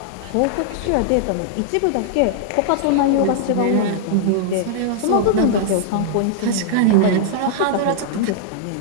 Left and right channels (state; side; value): different; both; correlation -0.01